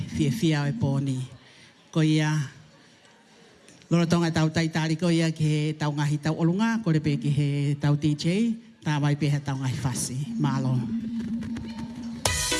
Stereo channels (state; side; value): identical; both; correlation 1.00